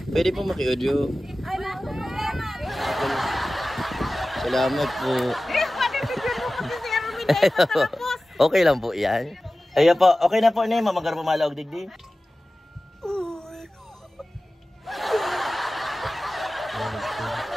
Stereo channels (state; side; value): normal; both; correlation 0.96